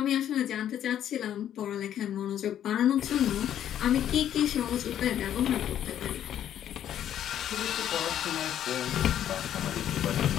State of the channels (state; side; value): quieter; right; 10.6 dB